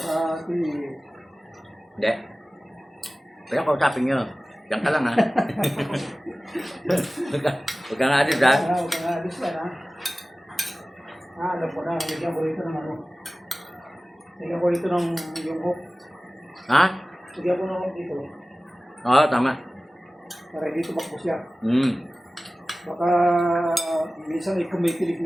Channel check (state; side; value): normal; both; correlation 0.97